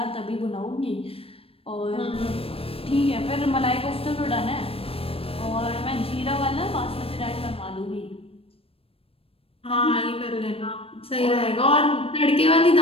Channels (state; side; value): late; right; 0.28 ms